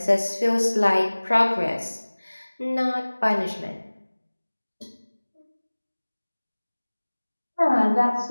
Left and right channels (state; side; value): inverted; both; correlation -1.00